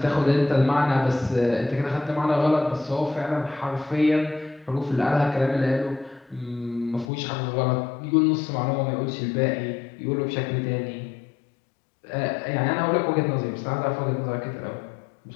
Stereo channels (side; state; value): right; drops out; at 7.1 s